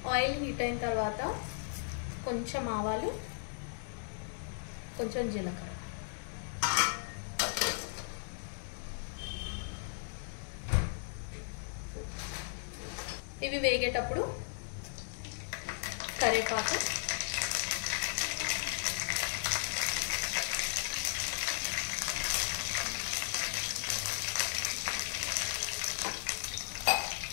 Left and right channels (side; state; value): right; silent; digital silence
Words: ఆయిల్ హీట్ అయిన తర్వాత కొంచెం ఆవాలు, కొంచెం జీలకర్ర. ఇవి వేగేటప్పుడు కరివేపాకు,